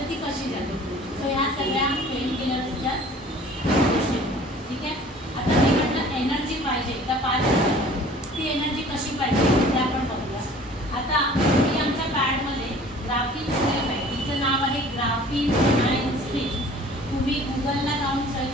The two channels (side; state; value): both; normal; correlation 0.49